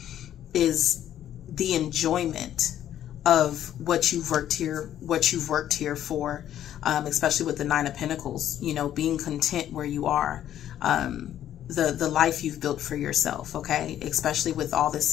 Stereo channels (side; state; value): right; quieter; 11.2 dB